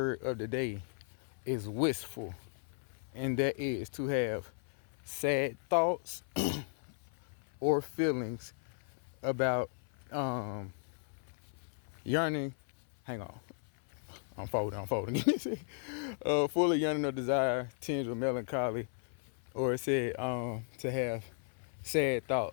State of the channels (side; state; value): right; silent; 54 dB below the other